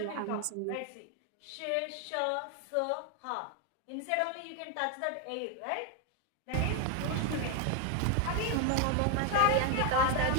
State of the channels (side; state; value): both; different; correlation 0.01